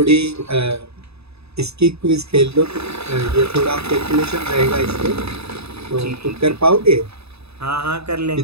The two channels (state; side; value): late; left; 0.79 ms